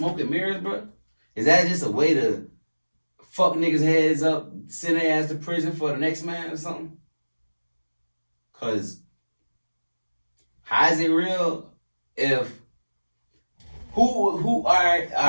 and mirrors, bro? Is that just a way to fuck niggas' heads up, send their ass to prison for the next man or something? Cause how is it real if who I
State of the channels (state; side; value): inverted; both; correlation -1.00